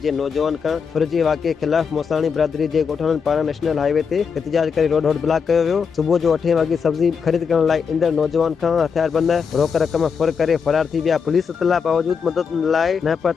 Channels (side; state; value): right; quieter; 6.1 dB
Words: जे नौजवान खां फुरिजे वाक़िए ख़िलाफ़ मोसाणी बिरादरी जे ॻोठाणनि पारां नेशनल हाईवे ते एहतजाज करे रोड ब्लॉक कयो वियो। सुबुह जो 8 वॻे सब्जी ख़रीद करण लाइ ईंदड़ नौजवान खां हथियारबंद रोक रक़म फुर करे फरार थी विया। पुलिस इतला बावजूद मदद लाइ न